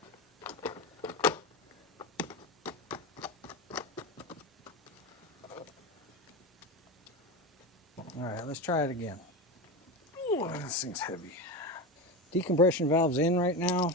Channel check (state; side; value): normal; both; correlation 0.20